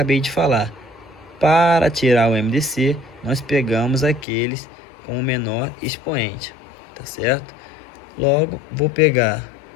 de falar, para tirar o MDC, nós pegamos aqueles com o menor expoente, tá certo? Logo, vou pegar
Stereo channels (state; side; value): drops out; right; at 4.2 s